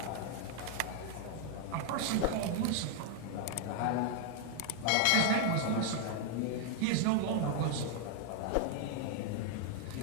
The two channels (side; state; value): both; different; correlation 0.00